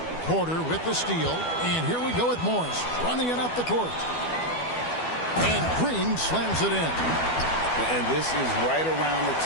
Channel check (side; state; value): right; late; 12 ms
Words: Porter with the steal. And here we go with Morris running it up the court. And Green slams it in. And this is right around the